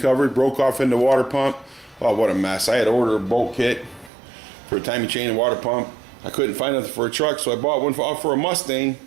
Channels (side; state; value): left; drops out; at 4.1 s